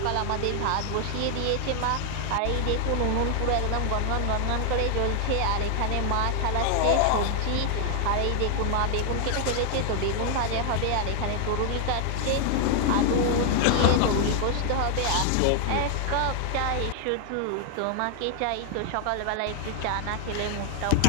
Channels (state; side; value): different; both; correlation 0.00